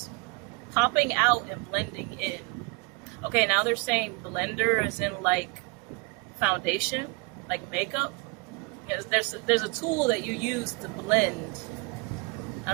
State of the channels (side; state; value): left; quieter; 28.0 dB